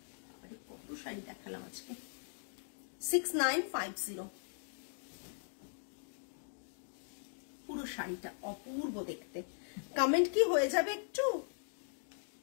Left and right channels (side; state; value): right; silent; digital silence